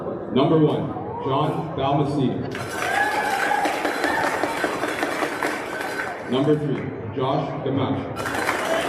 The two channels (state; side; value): identical; both; correlation 1.00